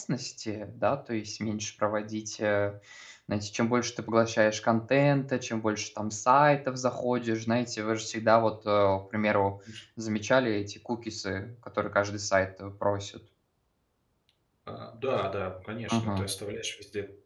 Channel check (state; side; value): identical; both; correlation 1.00